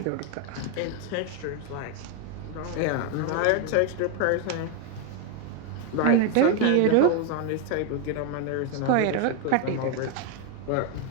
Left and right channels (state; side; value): different; both; correlation 0.01